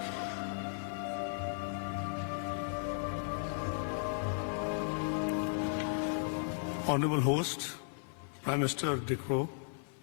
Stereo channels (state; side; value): silent; right; 54 dB below the other